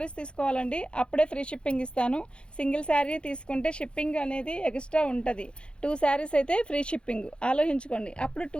తీసుకోవాలండి, అప్పుడే ఫ్రీ షిప్పింగ్ ఇస్తాను. సింగిల్ శారీ తీసుకుంటే షిప్పింగ్ అనేది ఎక్స్ట్రా ఉంటుంది. 2 శారీస్ అయితే ఫ్రీ షిప్పింగ్, ఆలోచించుకోండి. అప్పుడు 2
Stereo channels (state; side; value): late; right; 0.055 ms